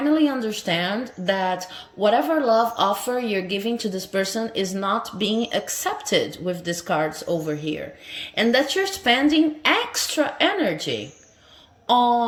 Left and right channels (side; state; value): both; identical; correlation 1.00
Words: understand that whatever love offer you're giving to this person is not being accepted with these cards over here, and that you're spending extra energy